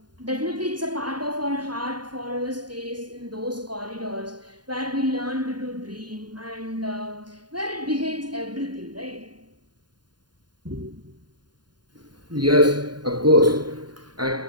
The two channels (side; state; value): left; late; 0.70 ms